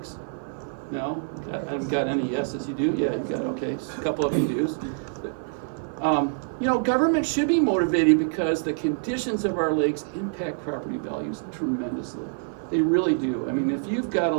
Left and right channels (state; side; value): silent; left; 55 dB below the other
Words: No? I haven't got any yeses. You do? Yeah, you got, okay. A couple of you do. Government should be motivated because the conditions of our lakes impact property values tremendously. They really do. I mean, if you've got a